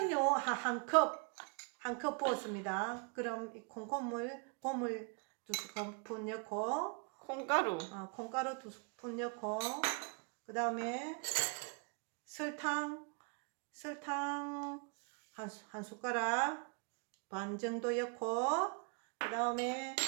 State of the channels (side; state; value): left; quieter; 35.3 dB